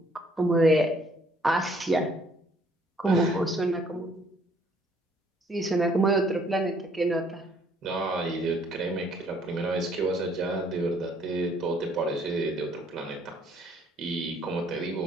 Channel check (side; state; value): both; normal; correlation 0.63